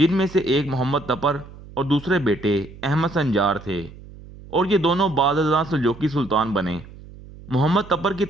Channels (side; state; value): right; noise; hum, 18 dB below the sound